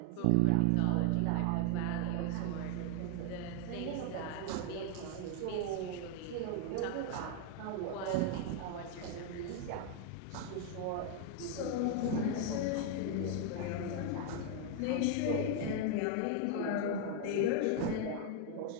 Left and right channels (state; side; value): different; both; correlation 0.00